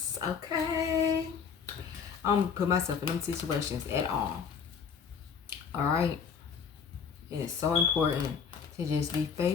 Okay, I don't put myself in them situations at all. All right, it's so important to just be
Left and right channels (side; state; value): right; quieter; 6.5 dB